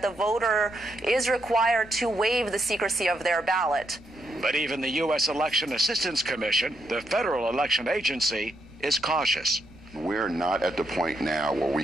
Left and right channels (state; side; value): noise; right; rumble, 24 dB below the sound